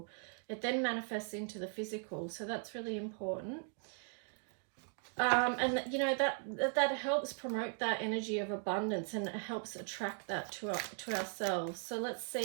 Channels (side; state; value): left; silent; 52 dB below the other